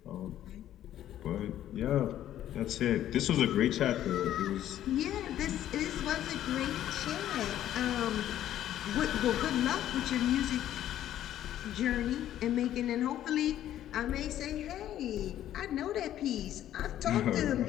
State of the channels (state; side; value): quieter; right; 12.0 dB